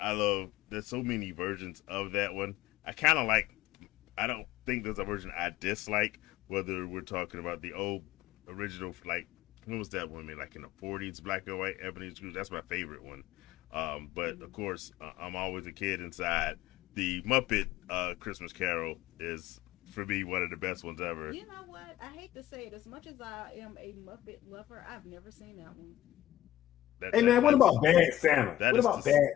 love. There's so many versions of that one. I kind of like. I don't think there's a version I dislike. Whether we're talking about the old original, like when was that one made? Like in the '40s, black and white Ebony Scrooge. That's my favorite one. But of course, I'm always a kid inside. The Muppet Christmas Carol is for me one of the best ones ever. You know what? I hate to say it. As much as I am a Muppet lover, I've never seen that one. That, Hey that man, what that's about Bad Santa? that What is about the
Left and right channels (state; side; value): quieter; right; 13.5 dB